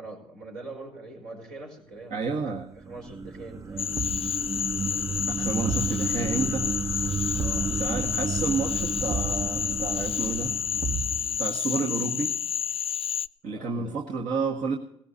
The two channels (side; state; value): both; normal; correlation 0.57